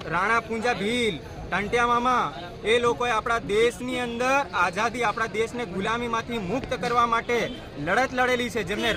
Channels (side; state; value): both; identical; correlation 1.00